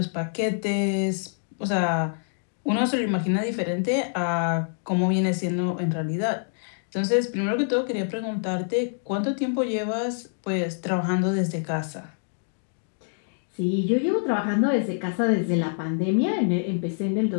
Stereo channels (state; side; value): silent; right; digital silence